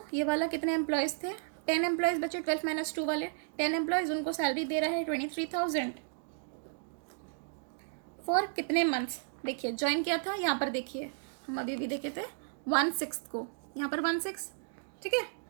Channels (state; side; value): silent; left; digital silence